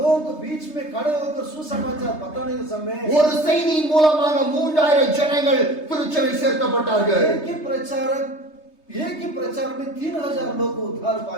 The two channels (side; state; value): right; late; 3.3 ms